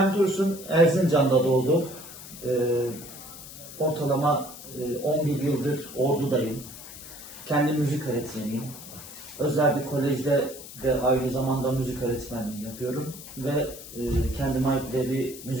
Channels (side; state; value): left; noise; hiss, 14 dB below the sound